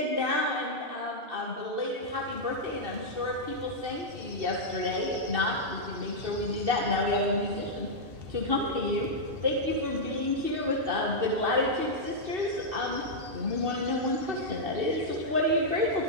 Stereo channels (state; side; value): late; left; 2.6 ms